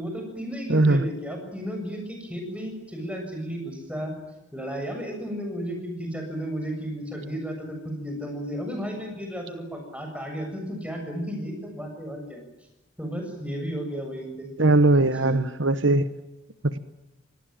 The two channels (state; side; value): normal; both; correlation 0.51